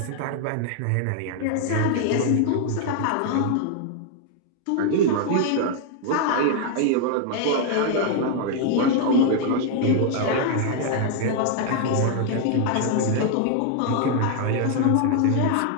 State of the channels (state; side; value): different; both; correlation 0.00